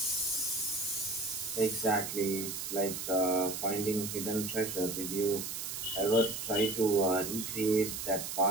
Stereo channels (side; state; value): right; noise; hiss, 5 dB below the sound